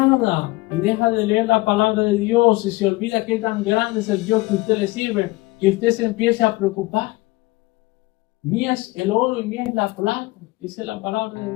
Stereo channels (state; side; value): quieter; right; 21.0 dB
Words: y deja de leer la palabra de Dios y se olvida qué tan grande es el Dios que usted le sirve, que usted se empiece a preocupar. Mía es el oro y mía es la plata, dice la palabra de